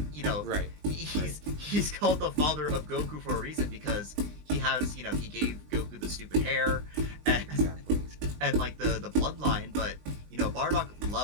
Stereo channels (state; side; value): late; left; 20 ms